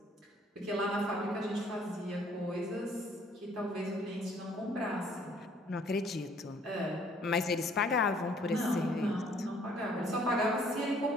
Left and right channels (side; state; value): both; normal; correlation 0.60